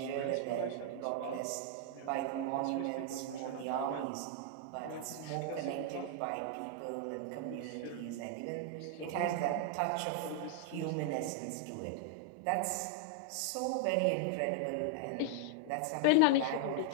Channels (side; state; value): both; different; correlation 0.00